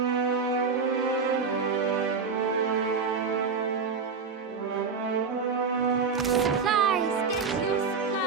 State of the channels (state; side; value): quieter; left; 5.3 dB